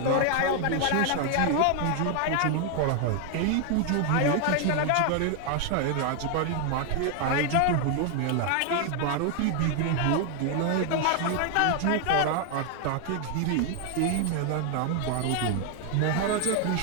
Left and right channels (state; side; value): different; both; correlation 0.01